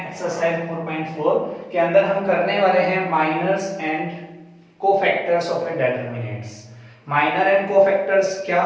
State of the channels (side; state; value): both; identical; correlation 1.00